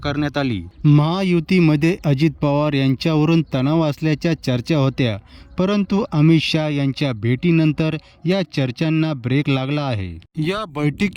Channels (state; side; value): identical; both; correlation 1.00